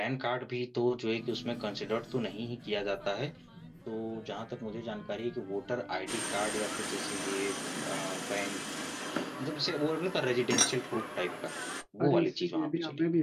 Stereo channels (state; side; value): identical; both; correlation 1.00